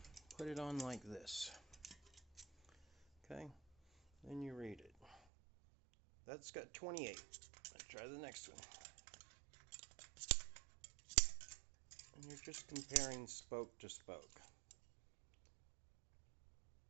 put it on like this. Okay, then you read it. That's got 28. Let's try the next one. And you're just comparing spoke to spoke.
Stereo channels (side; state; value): left; drops out; at 5.2 s